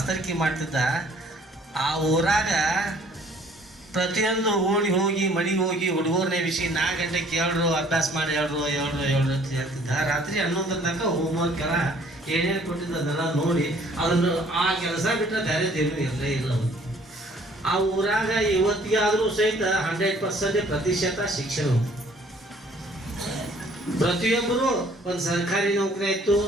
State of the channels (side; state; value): both; normal; correlation 0.58